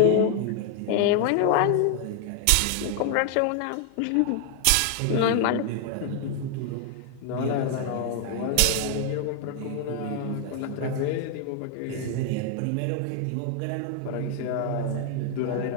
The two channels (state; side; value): different; both; correlation 0.00